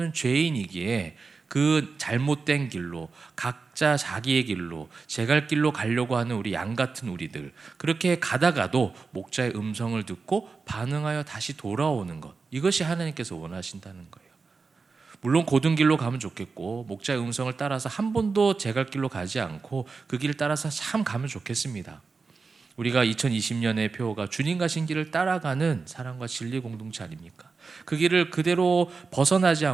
죄인이기에 그 잘못된 길로 각자 자기의 길로 제갈 길로 가려고 하는 우리 양 같은 우리들, 그렇게 가다가도 목자의 음성을 듣고 반응하여 다시 돌아오는 것, 이것이 하나님께서 원하신다는 거예요. 물론 고든 길로 가면 좋겠고 목자의 음성을 따라서 한 번도 제갈 길로 가지 않고 그 길을 따라서 참 가면 좋겠습니다. 우리가 2020년의 표어가 주님 가신 길을 따라가는 사랑과 진리 공동체 아닙니까? 그 길을 그대로 벗어나지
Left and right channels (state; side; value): quieter; left; 4.5 dB